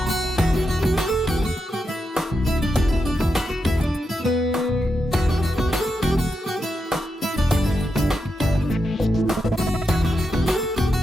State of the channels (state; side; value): normal; both; correlation 0.86